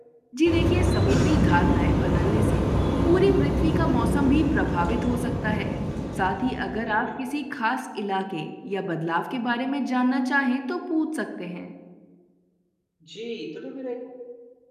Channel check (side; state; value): both; identical; correlation 1.00